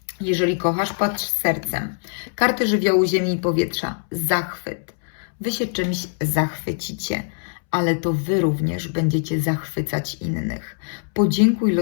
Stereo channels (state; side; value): silent; right; 64 dB below the other